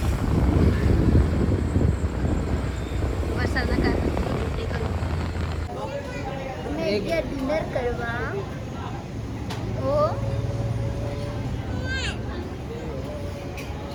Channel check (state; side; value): identical; both; correlation 1.00